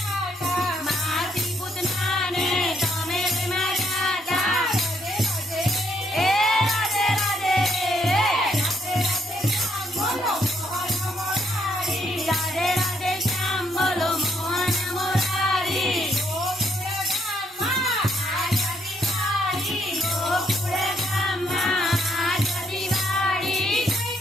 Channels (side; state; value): both; normal; correlation 0.72